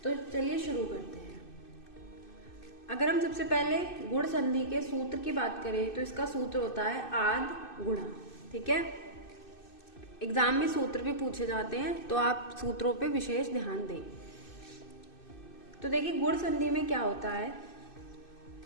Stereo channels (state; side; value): late; right; 2.6 ms